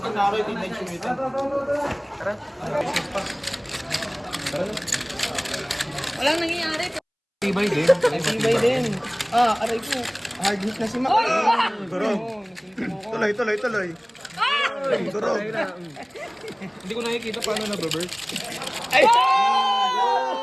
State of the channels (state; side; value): identical; both; correlation 1.00